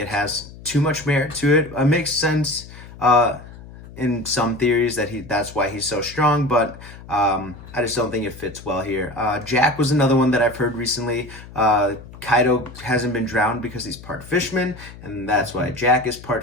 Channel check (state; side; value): noise; left; hum, 17 dB below the sound